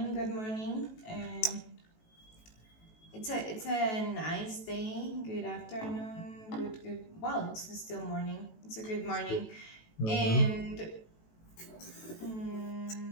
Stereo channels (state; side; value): late; right; 18 ms